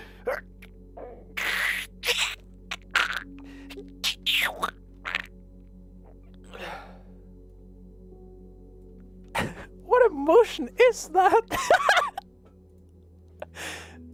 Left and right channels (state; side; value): identical; both; correlation 1.00